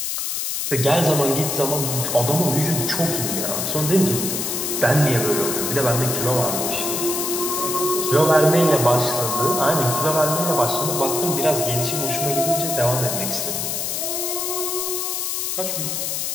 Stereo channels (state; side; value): noise; left; hiss, 2 dB below the sound